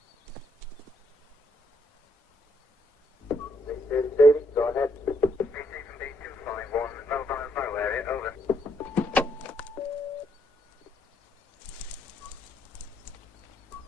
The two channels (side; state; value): both; normal; correlation 0.73